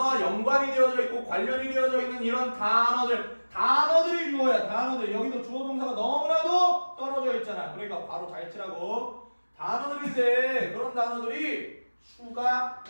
연관이 되어져 있고 관련이 되어져 있는 이런 단어들이 주어야 단어들. 여기도 주어 동사가 너무나도 떨어져 있잖아. 그러니까 바로 잘 치라고. 단어들인데 그런 단어들이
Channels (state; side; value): inverted; both; correlation -1.00